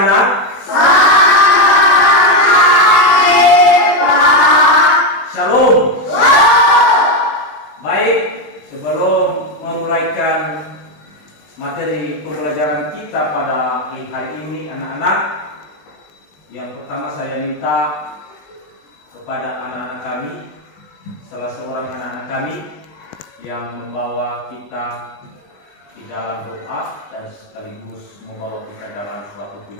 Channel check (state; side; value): late; right; 20 ms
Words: Shalom. Baik, sebelum memulaikan materi pembelajaran kita pada hari ini anak-anak, yang pertama saya minta kepada anak-anak kami, salah seorang anak-anak kami yang membawa kita di dalam doa dan sekaligus membawa kita dalam suatu